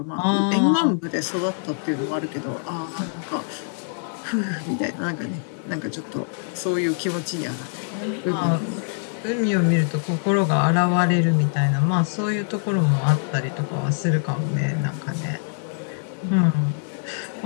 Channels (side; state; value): right; silent; 63 dB below the other